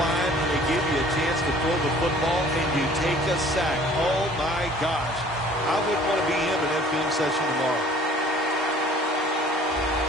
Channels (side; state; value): both; normal; correlation 0.52